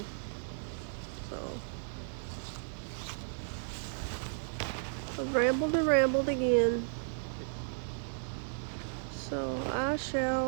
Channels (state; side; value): silent; left; 55 dB below the other